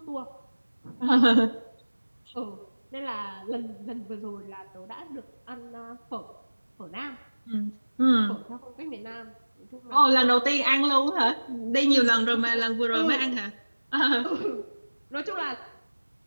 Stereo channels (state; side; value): inverted; both; correlation -1.00